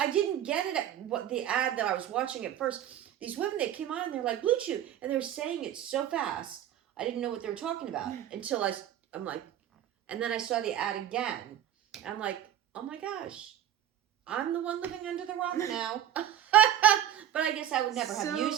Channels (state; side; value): quieter; left; 11.1 dB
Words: didn't get it at what the ad that I was watching at first. These women, they came on and they're like, Blue Chew. And they were saying it so fast. I didn't know what they were talking about until I'm like, and then I saw the ad again. I'm like, oh my gosh, I'm the one living under the rock now. But I guess I would never have